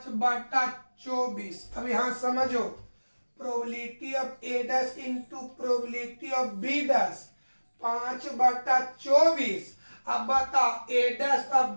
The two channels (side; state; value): both; inverted; correlation -1.00